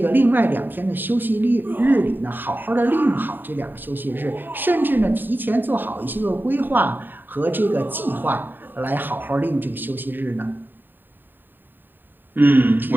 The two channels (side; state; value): left; late; 0.092 ms